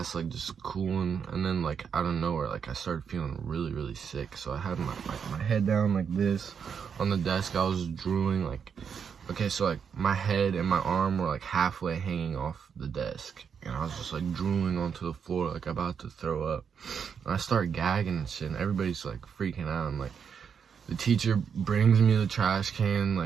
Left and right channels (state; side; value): quieter; left; 6.9 dB